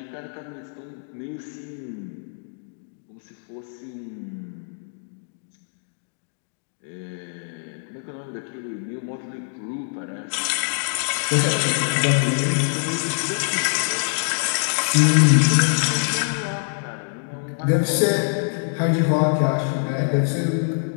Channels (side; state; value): right; silent; digital silence